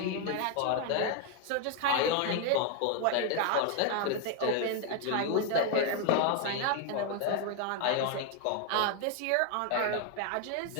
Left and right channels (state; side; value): different; both; correlation 0.01